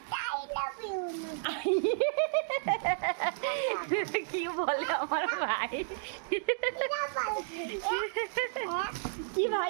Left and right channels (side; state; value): left; silent; digital silence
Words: এটা কি বলে আমার ভাই? কি